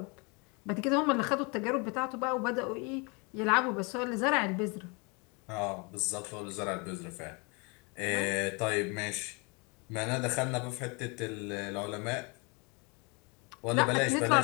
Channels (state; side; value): quieter; right; 30.7 dB